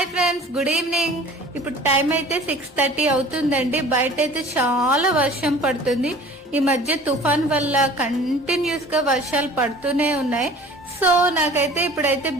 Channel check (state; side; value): normal; both; correlation 0.46